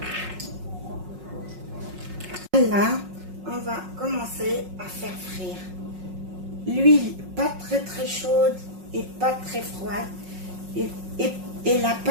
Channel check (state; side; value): late; left; 5.5 ms